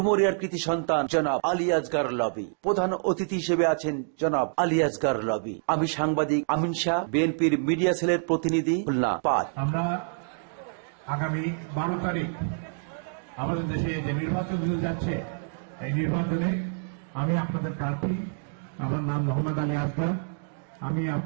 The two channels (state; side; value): silent; left; digital silence